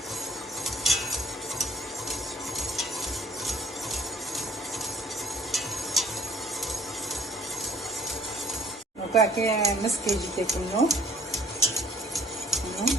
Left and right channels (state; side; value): normal; both; correlation 0.60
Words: Aqui é mesquite que tem no,